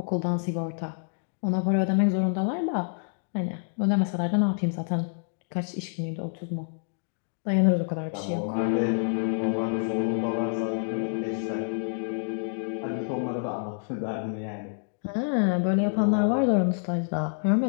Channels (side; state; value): right; silent; digital silence